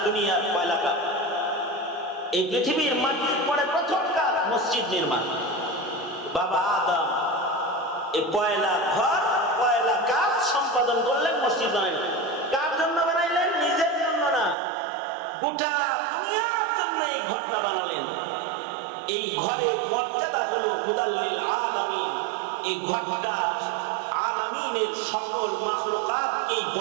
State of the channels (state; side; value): drops out; left; at 14.6 s